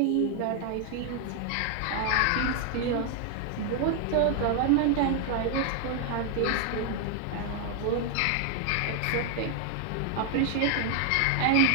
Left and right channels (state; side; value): different; both; correlation 0.00